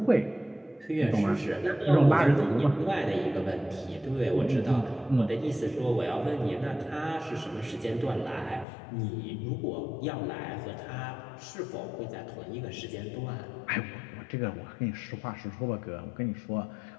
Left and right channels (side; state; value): right; drops out; at 8.7 s